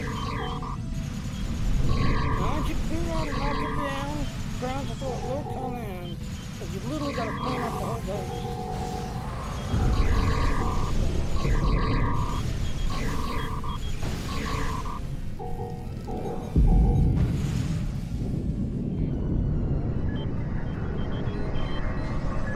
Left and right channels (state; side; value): identical; both; correlation 1.00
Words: Once you clear out and knock it down, ground support will come in. But you literally got to clean up the whole base.